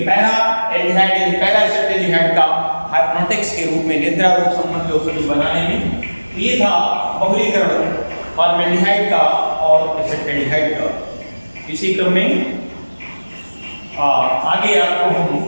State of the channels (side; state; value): both; inverted; correlation -1.00